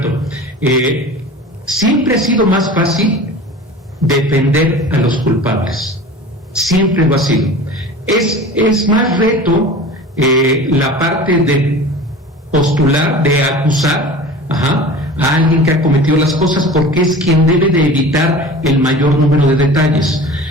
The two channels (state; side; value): normal; both; correlation 0.38